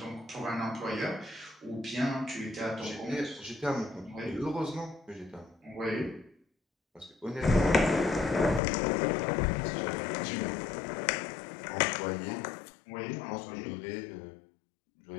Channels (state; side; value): drops out; right; at 8.6 s